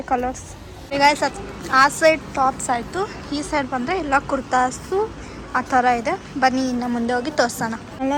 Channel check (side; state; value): both; identical; correlation 1.00